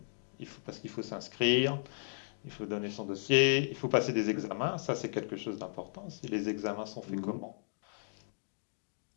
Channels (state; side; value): silent; right; digital silence